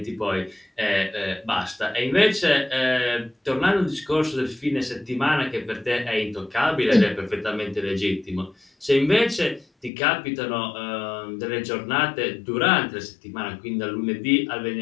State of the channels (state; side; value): drops out; right; at 9.9 s